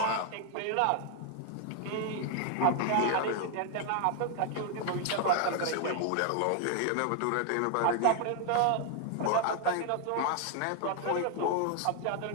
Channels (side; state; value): both; different; correlation 0.00